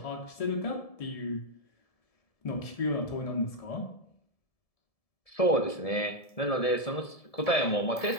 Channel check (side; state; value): right; late; 1.7 ms